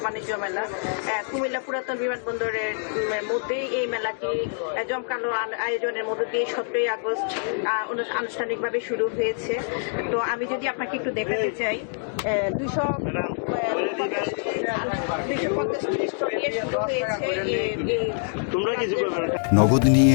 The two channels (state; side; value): silent; right; 61 dB below the other